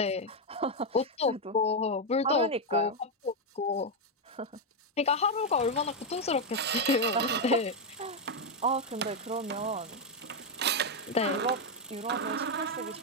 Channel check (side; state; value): both; normal; correlation 0.03